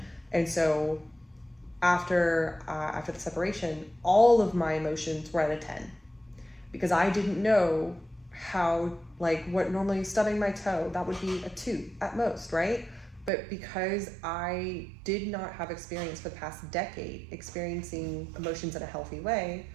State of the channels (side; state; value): left; drops out; at 13.3 s